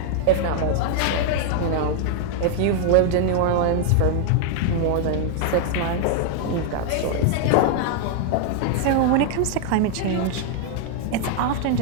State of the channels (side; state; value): both; different; correlation 0.00